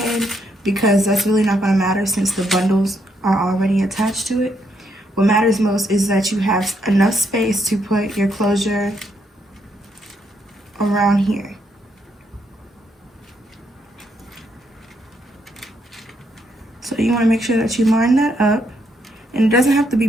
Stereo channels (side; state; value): both; normal; correlation 0.76